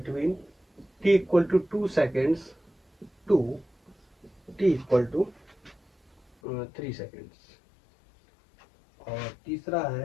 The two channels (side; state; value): right; drops out; at 6.4 s